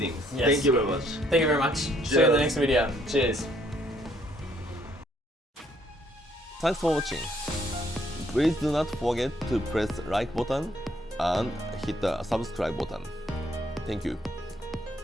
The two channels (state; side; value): normal; both; correlation 0.67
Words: Yes. Thank you very much. Thank you very much. See you in the next video. Cheers. Thanks for watching. Please do not forget to press like button and hit the subscribe button. Thank you.